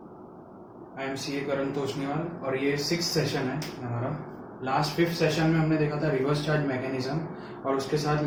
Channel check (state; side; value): identical; both; correlation 1.00